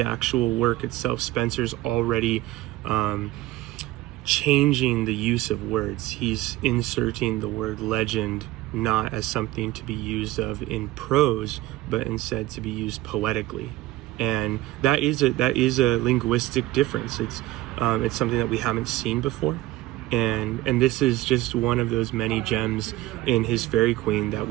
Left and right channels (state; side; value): quieter; left; 17.1 dB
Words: actual work itself, Spenser's already changing the use of words. He's inserting the word legend not as something to be used of in prose, but instead to be used poetically. And that is a linguistic difference. It's something that we haven't seen before. And this is just one of those many gems in his Fairy Queen that